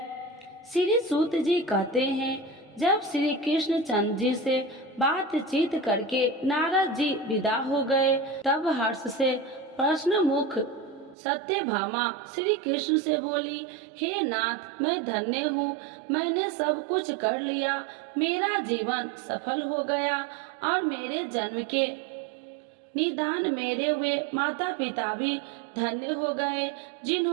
श्री सूत जी कहते हैं, जब श्री कृष्ण चंद्र जी से बातचीत करके नारद जी विदा हो गए, तब हर्ष से प्रश्न मुख सत्यभामा श्री कृष्ण से बोली, हे नाथ, मैं धन्य हूँ, मैंने सब कुछ कर लिया, मेरा जीवन सफल हो गया और मेरे जन्म के निदान मेरे हुए माता पिता भी धन्य हो गए,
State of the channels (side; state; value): left; drops out; at 11.2 s